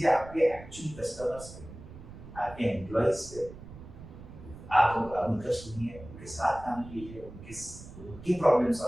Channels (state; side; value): noise; right; rumble, 15 dB below the sound